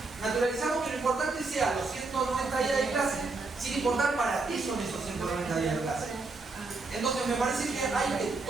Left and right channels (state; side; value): quieter; left; 3.7 dB